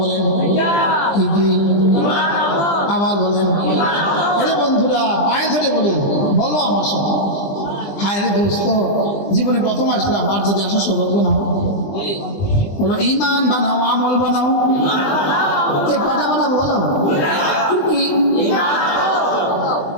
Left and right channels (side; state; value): right; late; 20 ms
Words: বলেন কি কি আবার বলেন আরে বন্ধুরা পায়ে ধরে বলেন বলো আমার সাথে হায় রে দোস্ত জীবনে প্রথম আসলাম আর যদি আসা সৌভাগ্য না বলো ঈমান বানাও আমল বানাও এই কয়টা বানাবো বলো কি